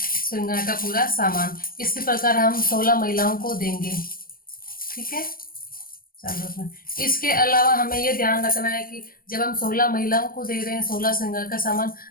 श्रृंगार का पूरा सामान। इसी प्रकार हम 16 महिलाओं को देंगे। ठीक है। चलो, इसके अलावा हमें ये ध्यान रखना है कि जब हम 16 महिलाओं को दे रहे हैं 16 श्रृंगार का सामान,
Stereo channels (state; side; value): late; right; 0.42 ms